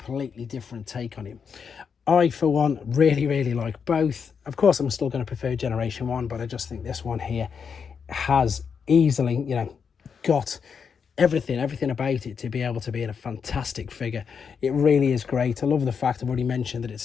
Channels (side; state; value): right; quieter; 6.4 dB